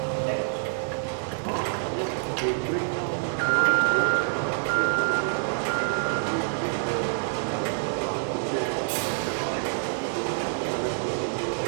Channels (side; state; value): left; silent; 60 dB below the other